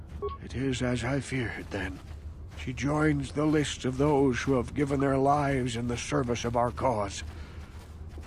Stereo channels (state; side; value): identical; both; correlation 1.00